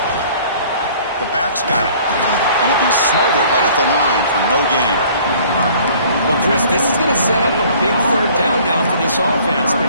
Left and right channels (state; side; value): inverted; both; correlation -0.53